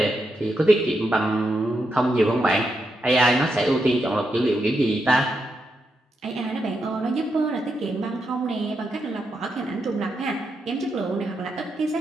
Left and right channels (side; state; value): both; normal; correlation 0.83